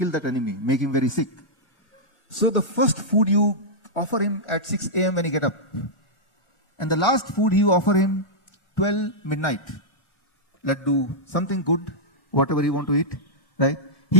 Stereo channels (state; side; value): late; right; 1.4 ms